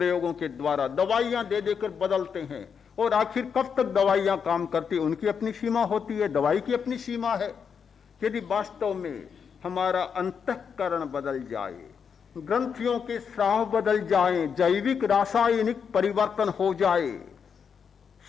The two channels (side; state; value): right; quieter; 6.7 dB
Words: के द्वारा, दवाइयां दे देकर बदलते हैं। और आखिर कब तक दवाइयां काम करती, उनकी अपनी सीमा होती है, दवाई की अपनी सीमा है। यदि वास्तव में हमारा अंतःकरण बदल जाए, ग्रंथियों के स्राव बदल जाएं, जैविक रासायनिक परिवर्तन हो जाए,